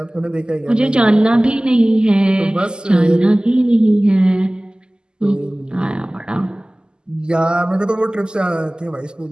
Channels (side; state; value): left; late; 0.046 ms